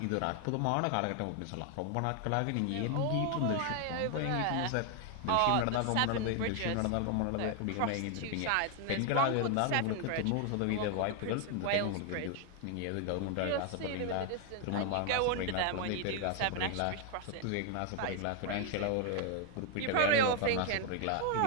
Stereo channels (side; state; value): both; different; correlation 0.00